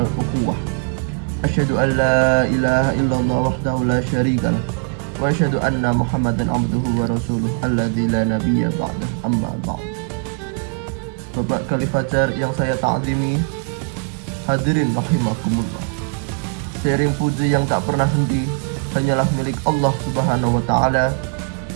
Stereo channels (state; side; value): quieter; left; 36.8 dB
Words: ukhuwah. Asyhadu an la ilaha illallah wahdahu la syarikalah wa asyhadu anna Muhammadan abduhu wa rasuluh alladzi la nabiyya ba'dahu, amma ba'd. Bapak Khalif Fajar yang saya ta'zimi, hadirin rahimakumullah. Seiring puji yang tak pernah henti hanyalah milik Allah Subhanahu wa taala.